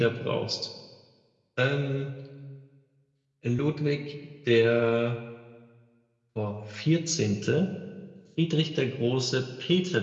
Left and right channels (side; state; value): both; identical; correlation 1.00